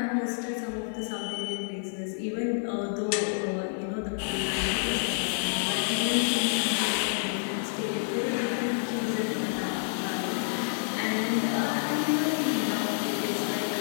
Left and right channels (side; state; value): right; silent; digital silence